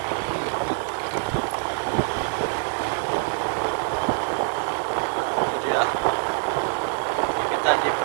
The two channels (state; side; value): silent; left; digital silence